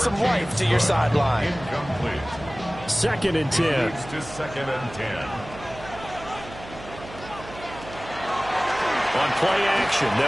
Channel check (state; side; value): noise; right; hum, 15 dB below the sound